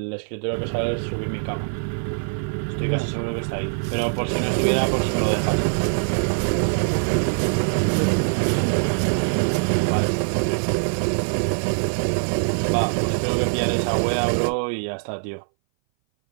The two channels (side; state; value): left; silent; 60 dB below the other